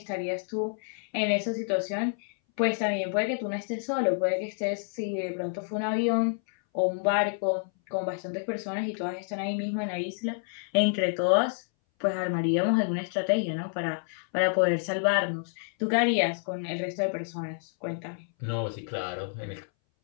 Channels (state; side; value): silent; right; 59 dB below the other